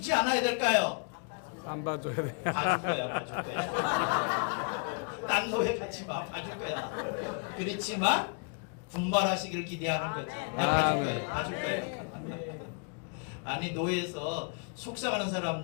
않아야 될까요? 안 봐줘야 돼. 봐줄 거야, 봐줄 거야. 딴 노예 같이 마, 봐줄 거야. 그렇지만 분발하시기를 기대하는 거지. 나 봐줄 거야, 봐줄 거야. 아니 노예에서 속삭이는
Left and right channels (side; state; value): right; quieter; 37.7 dB